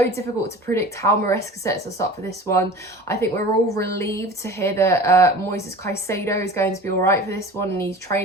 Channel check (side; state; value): both; normal; correlation 0.39